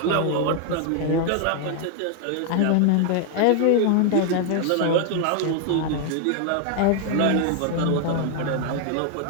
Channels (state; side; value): different; both; correlation 0.00